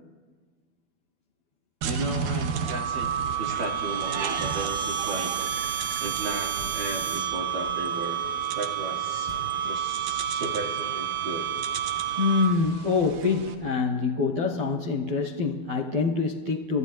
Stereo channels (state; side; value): late; left; 13 ms